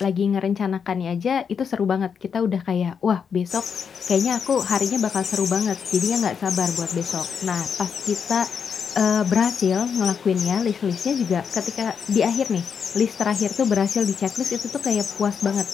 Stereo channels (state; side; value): quieter; right; 6.7 dB